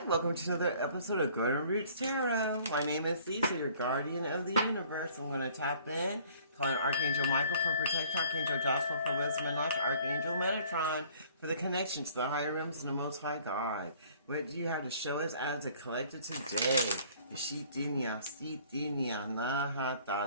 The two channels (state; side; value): inverted; both; correlation -0.55